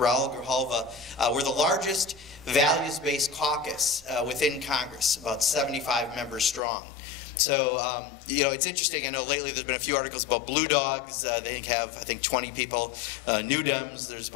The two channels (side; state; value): right; drops out; at 6.6 s